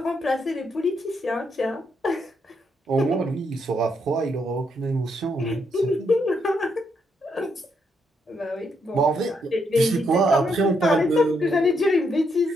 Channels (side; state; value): both; normal; correlation 0.77